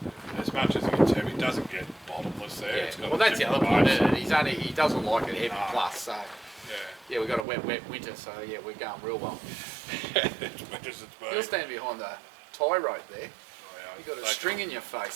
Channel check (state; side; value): drops out; left; at 7.5 s